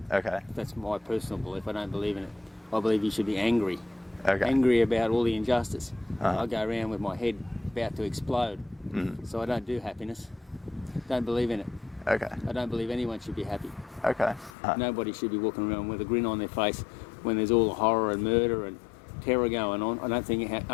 Okay. That's my personal belief. I don't believe in it. I believe you should be angry. Okay. Angry about all the injustice. Uh-huh. I go around with my head about to explode. So I don't do happiness. Don't believe in it. Okay. I don't believe anyone should be happy. Okay. Nobody should be walking around with a grin on their face when there's all the horror and murder and terror going on. I don't think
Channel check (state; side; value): drops out; right; at 14.5 s